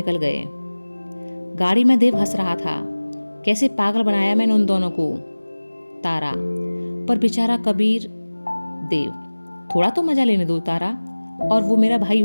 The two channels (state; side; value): inverted; both; correlation -1.00